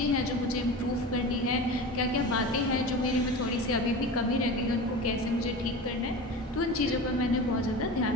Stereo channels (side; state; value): both; normal; correlation 0.30